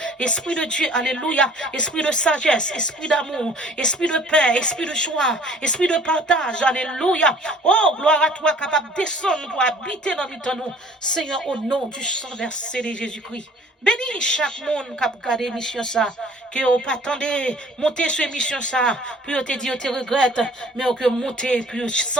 esprit de Dieu. Alléluia, esprit de sagesse, esprit d'amour, esprit de paix, esprit de joie, esprit de partage. Alléluia. Oh, gloire à toi, capable de descendre pour habiter dans nous. Seigneur, au nom du sang versé de Jésus-Christ. Bénis chaque monde qui a regardé l'émission ça, que vous pas attendez monter sur l'émission ça, puis vous te dit, vous te regrette, mais que monter, puis vous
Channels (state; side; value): normal; both; correlation 0.53